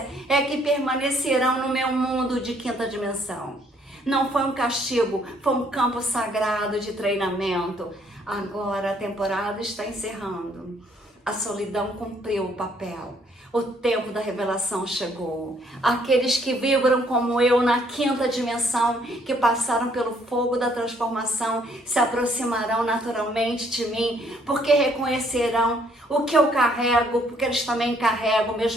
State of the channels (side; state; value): both; normal; correlation 0.66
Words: é que permanecerão no meu mundo de quinta dimensão. Não foi um castigo, foi um campo sagrado de treinamento. Agora a temporada está encerrando. A solidão cumpriu o papel. O tempo da revelação chegou. Aqueles que vibram como eu na quinta dimensão, que passaram pelo fogo da transformação, se aproximarão naturalmente de mim, porque reconhecerão o que eu carrego, porque eles também carregam o